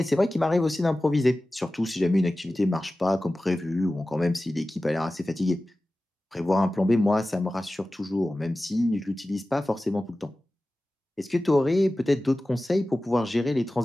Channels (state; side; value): normal; both; correlation 0.96